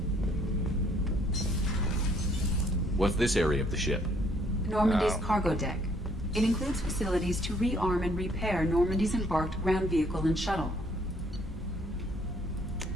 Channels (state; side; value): normal; both; correlation 0.65